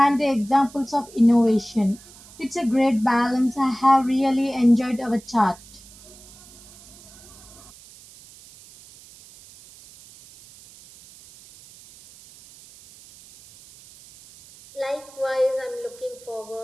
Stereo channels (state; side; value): noise; right; hiss, 22 dB below the sound